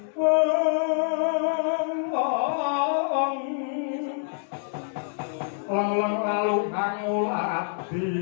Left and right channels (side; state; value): right; silent; digital silence